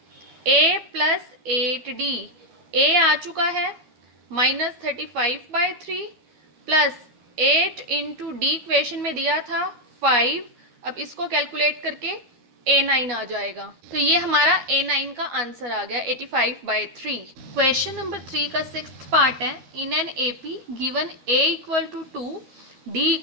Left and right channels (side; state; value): left; late; 12 ms